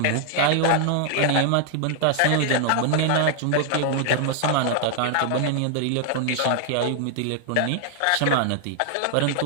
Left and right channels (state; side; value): different; both; correlation 0.00